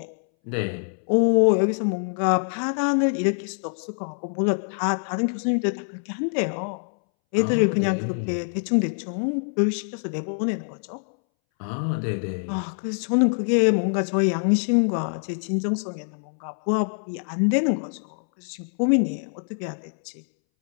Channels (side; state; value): right; silent; 62 dB below the other